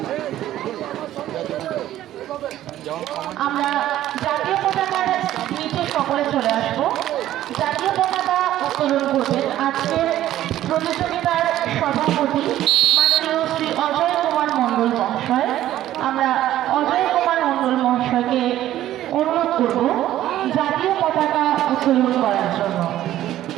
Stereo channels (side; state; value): left; quieter; 13.3 dB